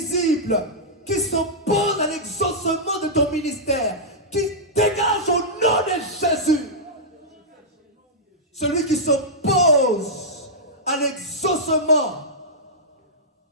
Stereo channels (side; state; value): both; normal; correlation -0.11